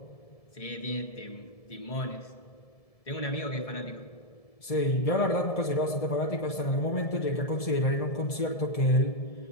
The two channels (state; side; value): late; right; 1.7 ms